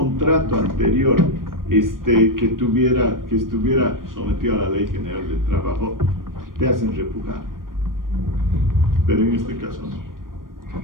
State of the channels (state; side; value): late; left; 0.91 ms